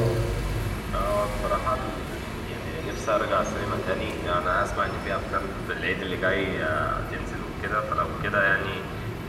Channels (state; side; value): identical; both; correlation 1.00